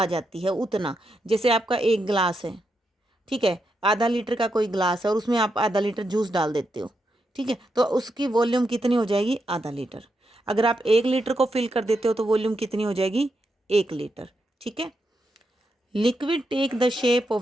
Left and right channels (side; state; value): both; normal; correlation 0.83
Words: जाती है, उतना। जैसे आपका एक गिलास है, ठीक है, आधा लीटर का कोई गिलास है और उसमें आप आधा लीटर जूस डाल देते हो, ठीक है, तो उसकी वॉल्यूम कितनी हो जाएगी? आधा लीटर। अगर आप 1 लीटर को फिल कर देते हो तो वॉल्यूम कितनी हो जाएगी? 1 लीटर। ठीक है। Liquid take the shape of